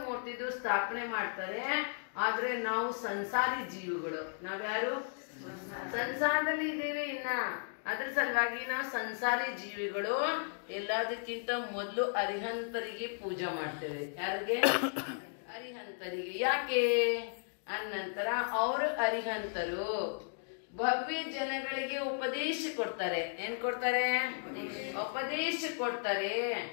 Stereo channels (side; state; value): right; silent; digital silence